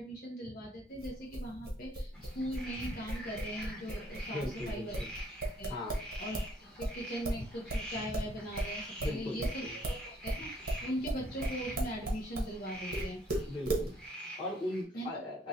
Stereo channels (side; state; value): both; normal; correlation 0.64